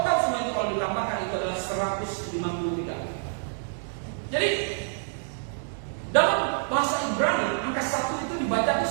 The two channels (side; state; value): left; silent; digital silence